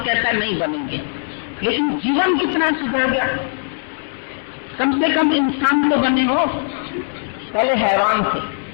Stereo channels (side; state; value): right; silent; 66 dB below the other